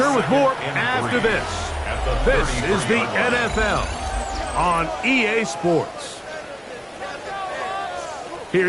with more after this. This is the NFL on EA Sports.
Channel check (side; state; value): both; identical; correlation 1.00